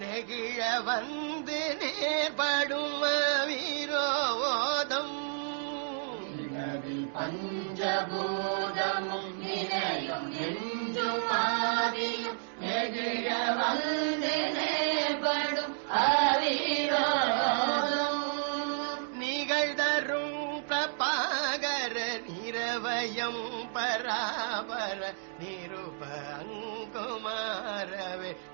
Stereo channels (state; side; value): silent; left; digital silence